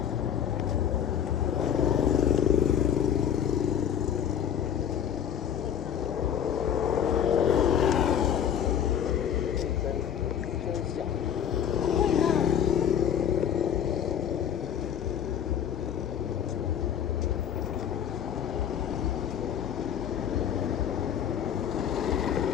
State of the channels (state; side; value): quieter; right; 8.9 dB